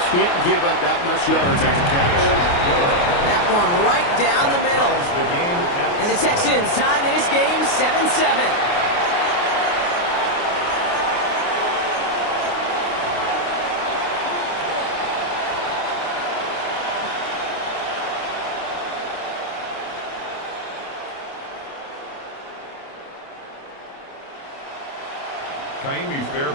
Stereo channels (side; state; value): right; late; 29 ms